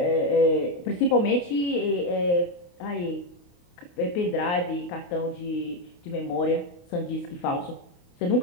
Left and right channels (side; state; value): right; late; 28 ms